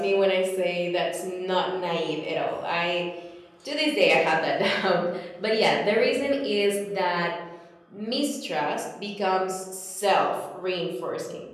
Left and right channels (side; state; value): both; identical; correlation 1.00